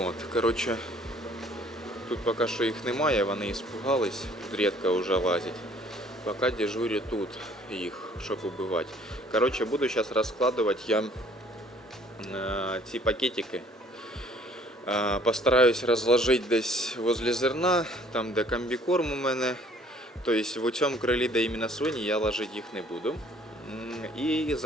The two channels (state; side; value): normal; both; correlation 0.57